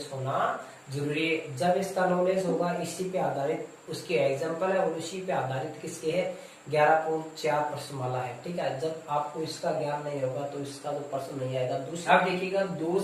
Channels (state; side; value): identical; both; correlation 1.00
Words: होना जरूरी है। जब इसका नॉलेज होगा, इसी पे आधारित उसके एग्जाम्पल है और उसी पे आधारित किसके है, 11.4 प्रश्नमाला है। ठीक है, जब आपको इसका ज्ञान नहीं होगा तो इसका तो प्रश्न नहीं आएगा। दूसरा आप देखिएगा, दो